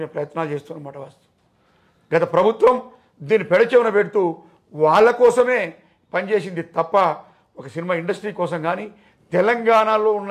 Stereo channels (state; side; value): identical; both; correlation 1.00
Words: మేము ప్రయత్నాలు చేస్తున్నమాట. వాస్తవం గత ప్రభుత్వం దీన్ని పెడచెవిన పెడుతూ వాళ్ళ కోసమే పనిచేసింది తప్ప ఒక సినిమా ఇండస్ట్రీ కోసం కానీ తెలంగాణలో ఉన్న